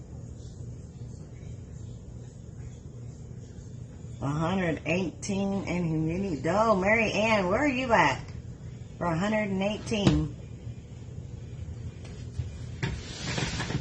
$118 and humidity. Oh, Mary Ann, where are you at for 118?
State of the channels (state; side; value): identical; both; correlation 1.00